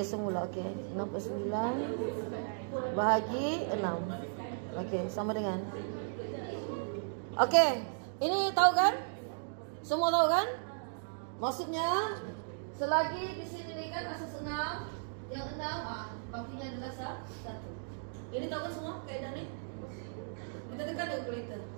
semula okey. 649 bahagi 6. Okey, sama dengan. Okey, ini tahu kan? Semua tahu kan? Maksudnya selagi di sini kan asas 6, yang 6 bakunya adalah 1. Ini tahu kan semua kaedah ni? Kita tekan dia kalkulator.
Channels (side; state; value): left; silent; digital silence